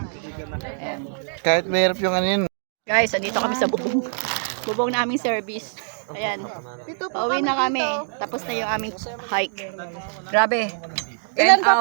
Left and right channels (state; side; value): silent; left; digital silence